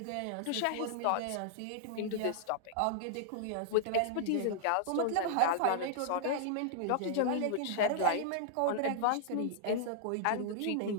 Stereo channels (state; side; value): different; both; correlation -0.01